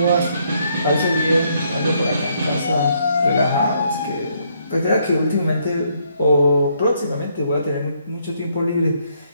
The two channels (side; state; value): both; inverted; correlation -0.72